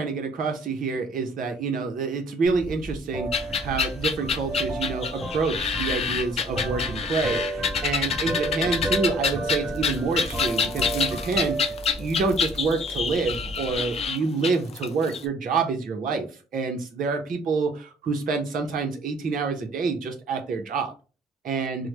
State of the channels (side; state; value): both; normal; correlation 0.56